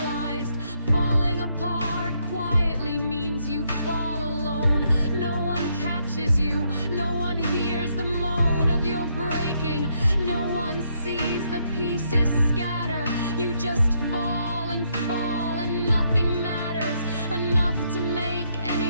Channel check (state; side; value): inverted; both; correlation -0.74